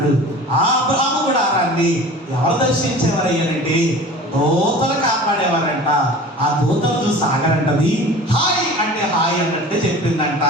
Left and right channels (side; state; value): both; normal; correlation 0.40